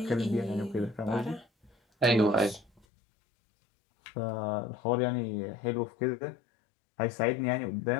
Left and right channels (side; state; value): right; drops out; at 2.9 s